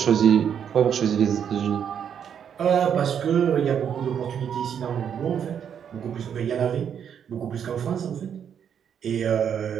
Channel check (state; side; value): quieter; left; 8.3 dB